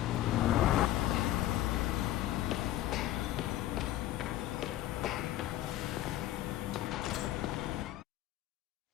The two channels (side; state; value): right; quieter; 14.2 dB